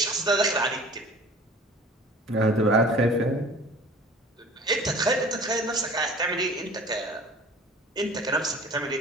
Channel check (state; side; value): normal; both; correlation 0.44